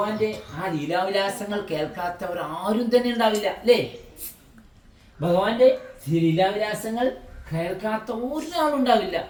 ആ ലീലാവിലാസങ്ങൾ കേൾക്കാത്തവർ ആരും തന്നെ ഉണ്ടാവില്ല, അല്ലേ? ഭഗവാന്റെ ലീലാവിലാസങ്ങൾ കേൾക്കാത്ത ഒരാളുണ്ടാവില്ല.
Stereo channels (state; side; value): identical; both; correlation 1.00